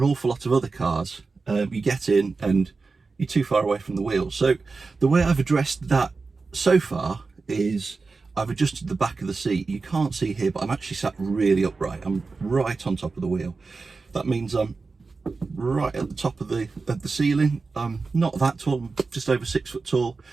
awful lot of other cars, you get in and you're too far away from the wheel. So the way I've addressed that so far is I've adjusted the back of the seat. You can't see here, but I'm actually sat really upright. I'm right on top of the wheel. That means I'm right at the top of the ceiling. I'm not that tall, I'm just over 6 foot tall,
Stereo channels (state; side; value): quieter; left; 4.2 dB